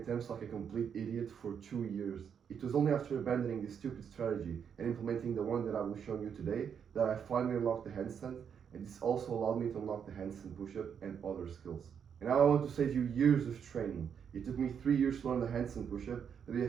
like a complete idiot for 2 years. It was only after abandoning this stupid strategy and implementing the one that I will show you today that I finally unlocked the handstand, and this also allowed me to unlock the handstand push-up and other skills. And now I want to save you years of training. It took me 3 years to learn the handstand push-up, but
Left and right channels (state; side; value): quieter; left; 7.6 dB